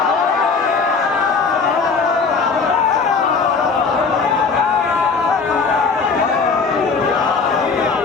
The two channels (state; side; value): quieter; right; 4.9 dB